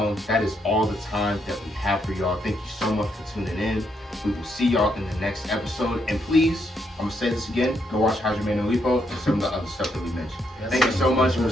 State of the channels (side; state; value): both; normal; correlation 0.77